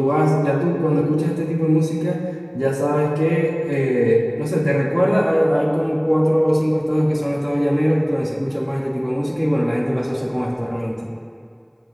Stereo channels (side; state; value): both; identical; correlation 1.00